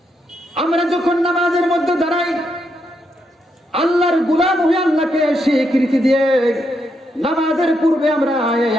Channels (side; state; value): both; normal; correlation 0.80